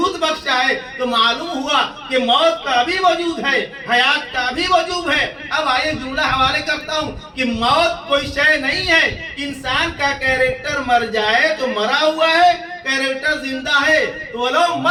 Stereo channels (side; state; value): both; identical; correlation 1.00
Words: بخشا ہے، تو معلوم ہوا کہ موت کا بھی وجود ہے، حیات کا بھی وجود ہے۔ اب آئیے جملہ حوالے کرتا ہوں کہ موت کوئی شے نہیں ہے، انسان کا کیریکٹر مر جائے تو مرا ہوا ہے، کیریکٹر زندہ ہے تو وہ لوگ